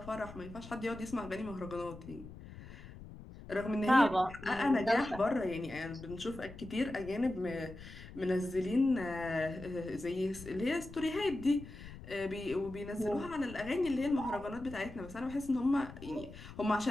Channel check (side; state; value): left; noise; rumble, 15 dB below the sound